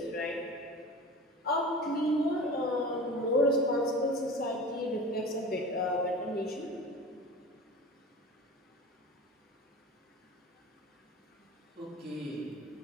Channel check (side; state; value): both; normal; correlation 0.36